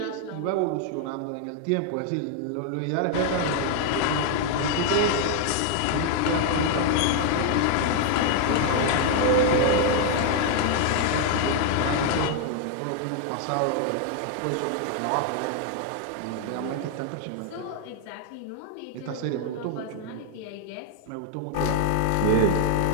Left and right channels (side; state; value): both; different; correlation 0.00